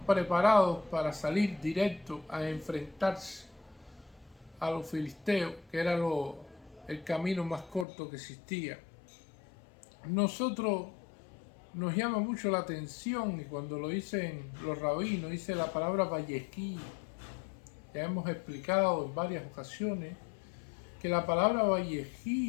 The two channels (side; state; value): right; drops out; at 7.9 s